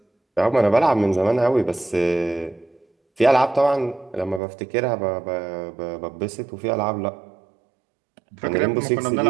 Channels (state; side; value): drops out; left; at 4.4 s